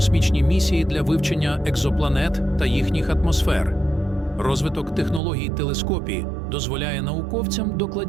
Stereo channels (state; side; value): drops out; left; at 5.2 s